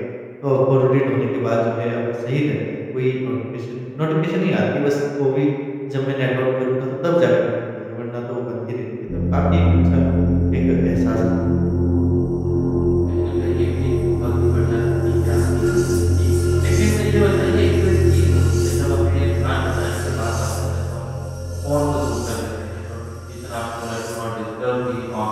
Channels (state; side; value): identical; both; correlation 1.00